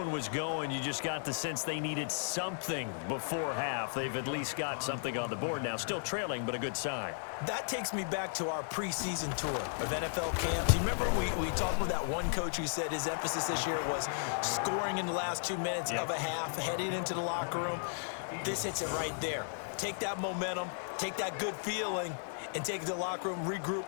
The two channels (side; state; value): right; silent; 55 dB below the other